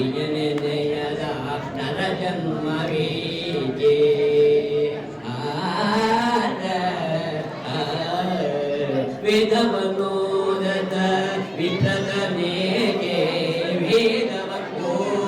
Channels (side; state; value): both; identical; correlation 1.00